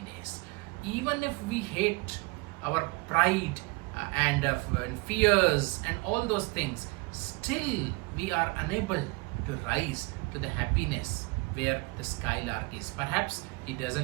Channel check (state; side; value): quieter; left; 26.8 dB